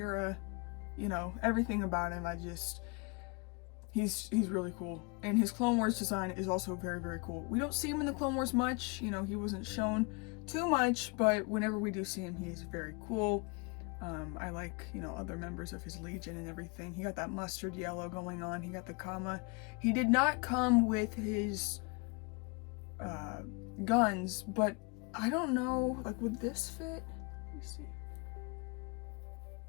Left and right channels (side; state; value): right; quieter; 30.9 dB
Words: You know, everything about him, he's really cool. And his Clone Wars design is also very cool. We don't see him in the Clone Wars much, you know, he wasn't shown too much, but whenever we do see him, he's very cool. I like, you know, other members of his Legion and everything. He got that mustard yellow going on. He got the Kama. He did not come with his guns, but I don't know, like, would this fit? Let me see.